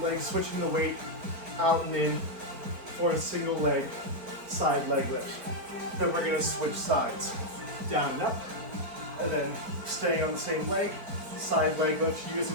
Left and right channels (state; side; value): late; left; 4.6 ms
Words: leg, switching the weight out and in for a single leg side leg lift. Then we're gonna switch sides, down and up, and then staying on the same leg, side leg lift,